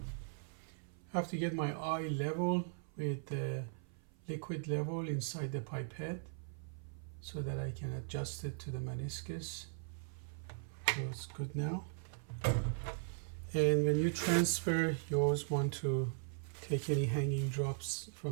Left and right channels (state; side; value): silent; left; 52 dB below the other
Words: I have to get my eye level with the liquid level inside the pipette so that I can adjust it to the meniscus. So it's good now. And when you transfer, you always want to take any hanging drops